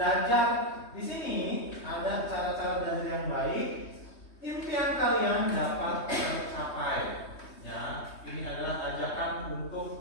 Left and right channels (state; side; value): late; right; 3.2 ms